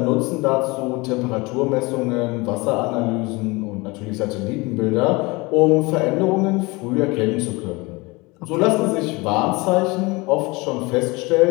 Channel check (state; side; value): quieter; right; 24.5 dB